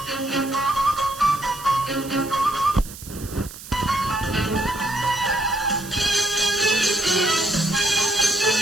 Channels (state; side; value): noise; right; hiss, 15 dB below the sound